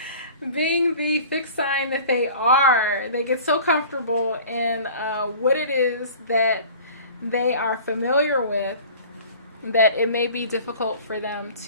Being the fixed sign that they are, they get so comfortable in what it is that they are familiar with that it may be difficult for them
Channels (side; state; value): both; inverted; correlation -0.44